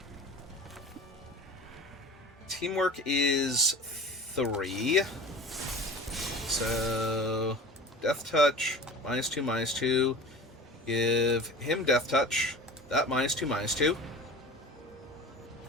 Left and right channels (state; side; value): normal; both; correlation 0.37